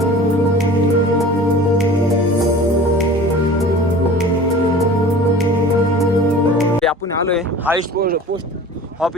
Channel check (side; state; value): both; normal; correlation 0.41